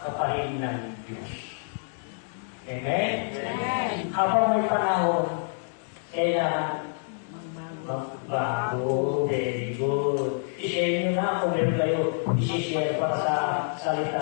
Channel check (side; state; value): right; silent; digital silence